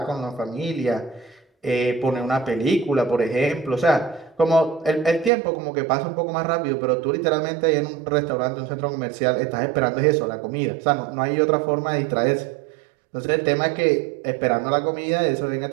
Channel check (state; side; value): drops out; left; at 5.3 s